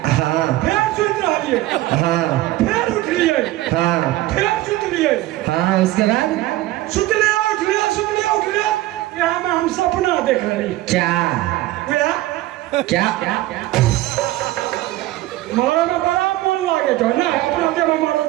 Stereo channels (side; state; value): left; quieter; 16.7 dB